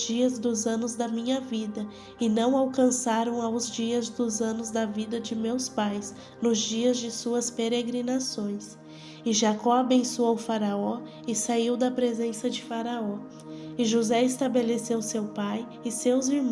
dos anos da minha vida, e não alcançaram aos dias dos anos da vida de meus pais, nos dias de suas peregrinações. E Jacó abençoou Faraó e saiu da presença de Faraó. E José estabeleceu seu pai e seus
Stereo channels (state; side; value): identical; both; correlation 1.00